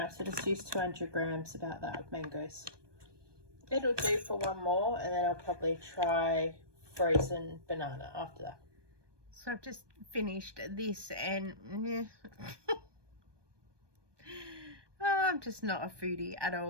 so just use 200 grams, about that, of mangoes. It'll do for one more, and then I'll probably try frozen banana after that. So I've just finished this, and I'm just not a foodie at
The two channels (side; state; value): left; late; 1.2 ms